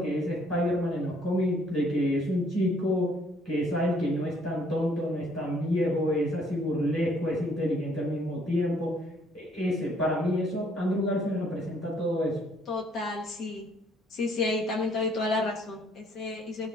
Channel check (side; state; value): both; normal; correlation 0.64